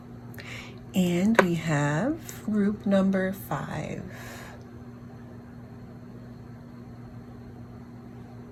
and we have group number 5.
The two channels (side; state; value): both; identical; correlation 1.00